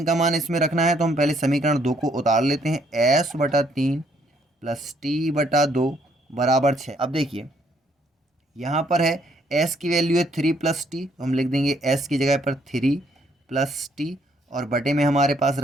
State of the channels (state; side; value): normal; both; correlation 0.68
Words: का मान इसमें रखना है तो हम पहले समीकरण 2 को उतार लेते हैं, s/3 प्लस t/2 बराबर 6। अब देखिए यहाँ पर है s की वैल्यू है 3 प्लस टी, तो हम लिख देंगे s की जगह पर 3 प्लस टी और बटे में हमारे पास